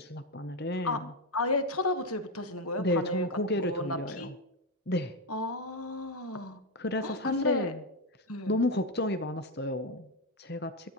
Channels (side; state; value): both; normal; correlation 0.08